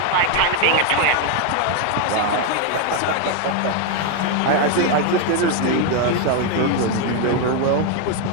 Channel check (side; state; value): both; different; correlation 0.01